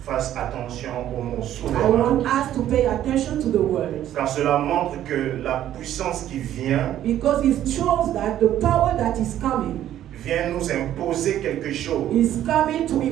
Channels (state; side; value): quieter; left; 11.9 dB